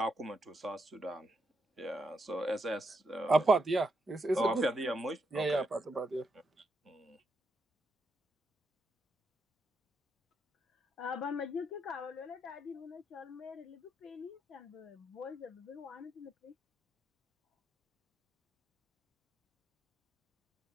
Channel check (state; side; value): normal; both; correlation 0.81